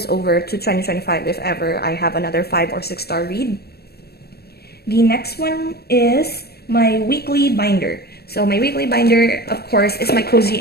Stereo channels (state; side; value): late; right; 0.46 ms